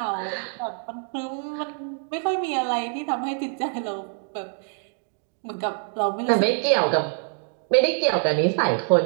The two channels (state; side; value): silent; left; 62 dB below the other